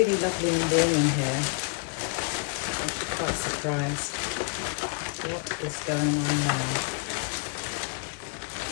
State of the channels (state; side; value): quieter; right; 37.1 dB